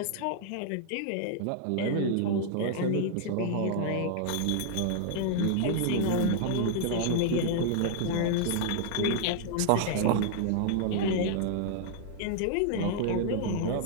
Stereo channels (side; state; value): both; different; correlation -0.01